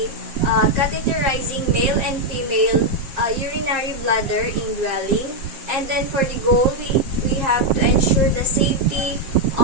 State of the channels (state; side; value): late; left; 7.5 ms